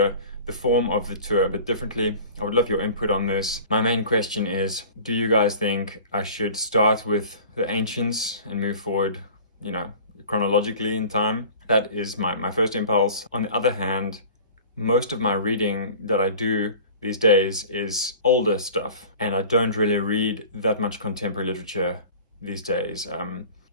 the form of the tour a bit differently. I would love your input on this. My main question is, do you guys think I should start with the ancients and move forward, chronologically in time? That is my first impulse. On the other hand, most of my reading that I do these days is older stuff, and I don't really read that much contemporary literature these days.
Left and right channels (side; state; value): both; inverted; correlation -0.42